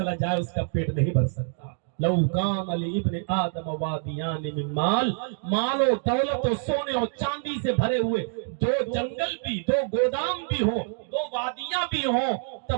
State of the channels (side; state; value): left; silent; digital silence